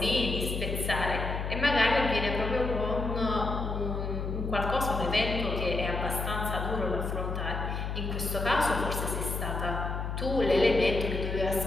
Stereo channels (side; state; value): left; noise; hum, 3 dB below the sound